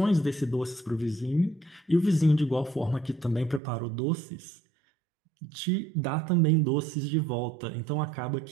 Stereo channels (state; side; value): drops out; left; at 3.6 s